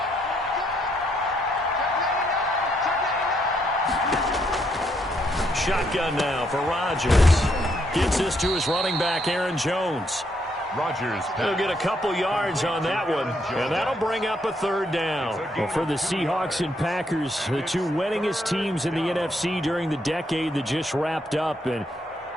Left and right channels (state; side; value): normal; both; correlation 0.74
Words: Shotgun now for Rodgers. Gets this to his running back, Aaron Jones. Rodgers. He'll get a couple yards on that one, and that'll bring up a third down. Well, for the Seahawks and Packers, the two winningest teams in the NFC during the decade that just wrapped up. And